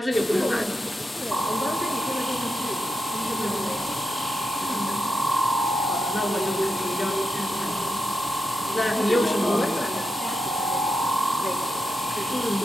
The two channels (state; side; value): normal; both; correlation 0.86